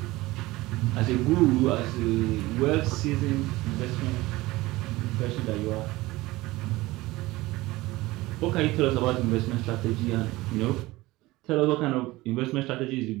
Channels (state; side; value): quieter; left; 19.5 dB